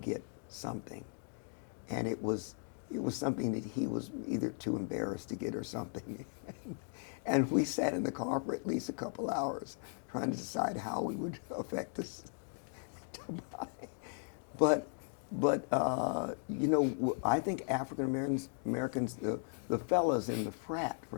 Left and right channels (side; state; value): right; silent; 53 dB below the other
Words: get something, and it was something that he was either too embarrassed to get or something. And we sat in the car for at least a couple hours trying to decide how we would affect this to buy. But I think African Americans, the fellas in the frat, for